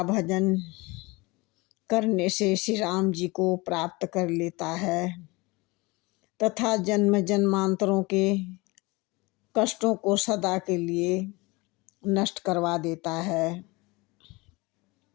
भजन करने से श्री राम जी को प्राप्त कर लेता है तथा जन्म जन्मांतरों के कष्टों को सदा के लिए नष्ट करवा देता है।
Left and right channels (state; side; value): quieter; right; 24.1 dB